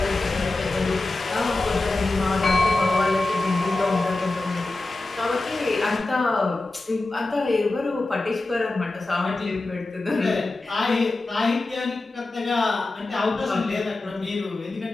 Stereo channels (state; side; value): quieter; right; 3.0 dB